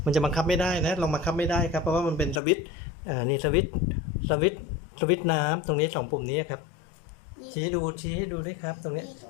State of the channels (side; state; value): right; drops out; at 2.4 s